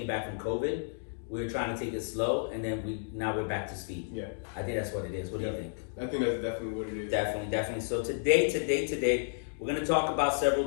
back from COVID, we were trying to take it slow, and then now we're back to speed. Yeah. I think that's what it is. What do you think? I think that's definitely what it is. Definitely. So today, we're going to talk about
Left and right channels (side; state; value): right; silent; digital silence